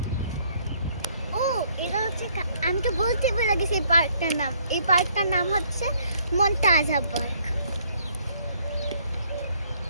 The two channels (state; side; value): inverted; both; correlation -0.65